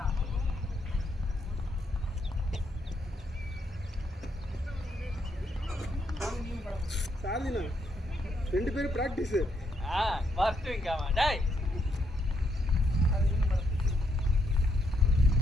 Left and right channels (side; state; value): both; normal; correlation 0.76